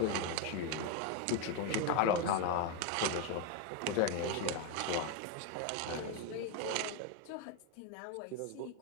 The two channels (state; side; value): different; both; correlation 0.02